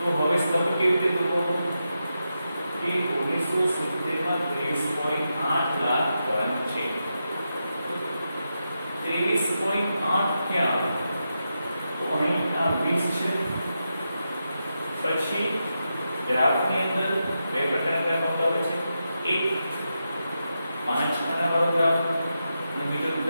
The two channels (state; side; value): inverted; both; correlation -0.87